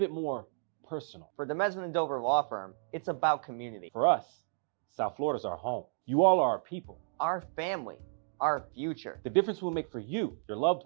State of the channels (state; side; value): silent; left; digital silence